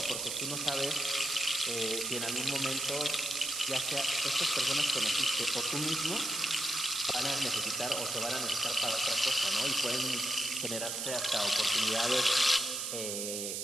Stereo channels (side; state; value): right; noise; hiss, 3 dB below the sound